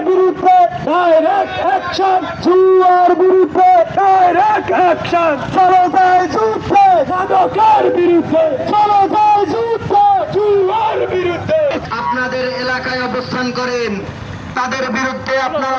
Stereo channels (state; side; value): identical; both; correlation 1.00